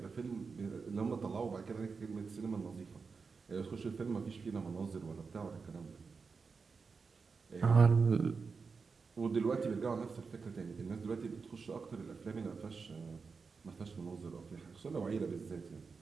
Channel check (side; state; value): left; quieter; 5.0 dB